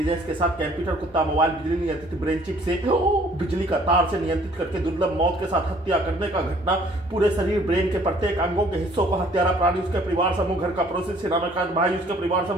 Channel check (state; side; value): normal; both; correlation 0.58